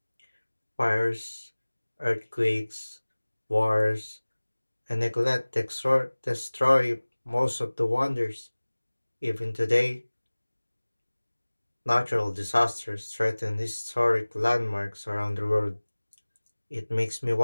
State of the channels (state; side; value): inverted; both; correlation -1.00